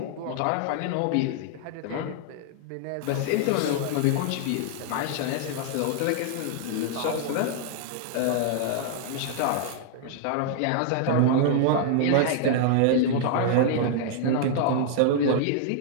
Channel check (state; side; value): different; both; correlation -0.01